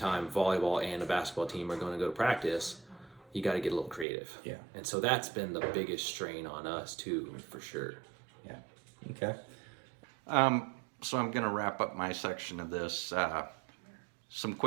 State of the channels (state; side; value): drops out; left; at 4.0 s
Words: volleyball and a basketball team are going to go to practice, you got to get a little creative. Yeah. And so that's been the biggest strain on us too, for sure. Yeah. Okay. So I'm going to wrap up my section of this. Some